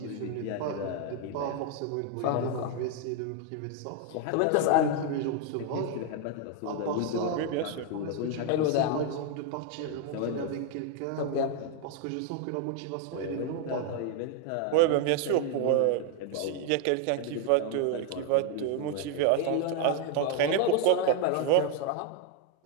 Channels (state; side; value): different; both; correlation 0.01